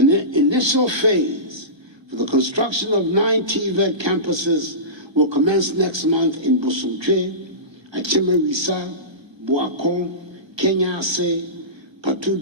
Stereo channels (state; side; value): late; left; 1.3 ms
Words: initial phase for the construction of 9 TVET campuses will commence next month in Bosumtwe, Achimewisa, Boakon, Kenyase,